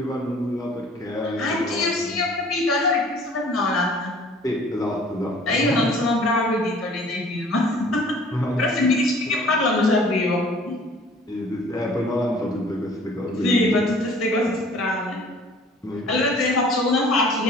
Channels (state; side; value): normal; both; correlation 0.51